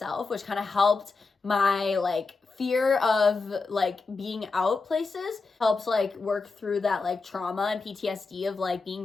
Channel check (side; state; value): right; quieter; 4.1 dB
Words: which kind of helped my fear of being out places. Helps work through that trauma and PTSD of